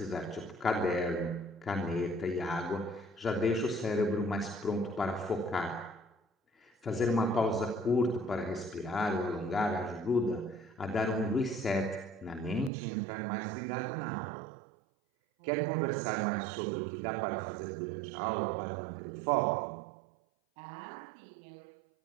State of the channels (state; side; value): drops out; left; at 12.7 s